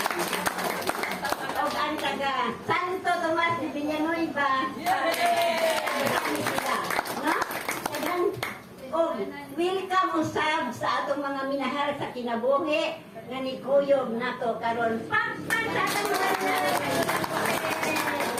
O ang taga Santo Tomas de Villanueva. No? O welcome usab sa atong mga minahal sa kinabuhi nga ni Kuyog nato karon. Pakpak sa atong mga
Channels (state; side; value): identical; both; correlation 1.00